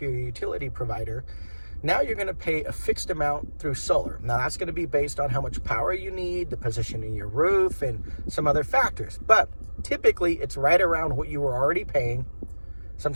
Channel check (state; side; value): inverted; both; correlation -1.00